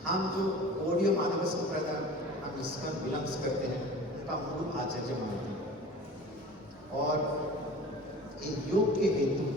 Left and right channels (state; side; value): normal; both; correlation 0.40